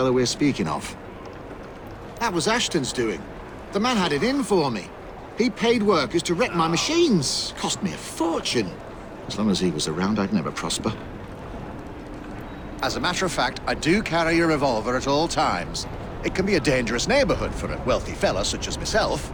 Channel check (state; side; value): identical; both; correlation 1.00